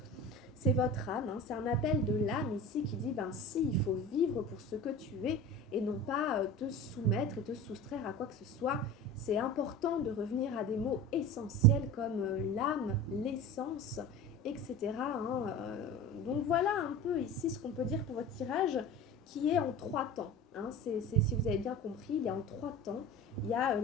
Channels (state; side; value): normal; both; correlation 0.34